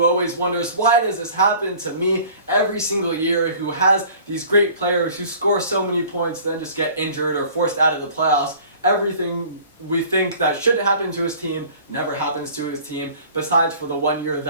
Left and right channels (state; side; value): inverted; both; correlation -0.48